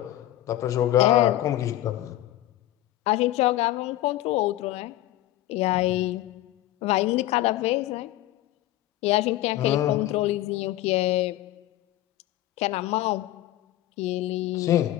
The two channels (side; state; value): right; quieter; 14.9 dB